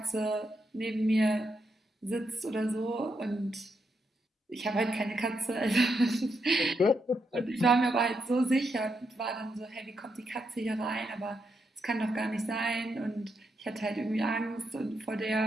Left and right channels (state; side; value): normal; both; correlation 0.81